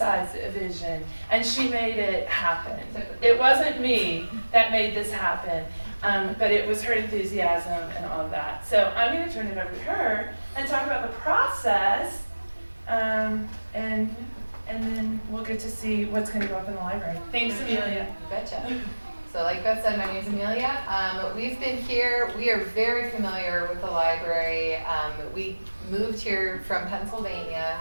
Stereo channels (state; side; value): inverted; both; correlation -1.00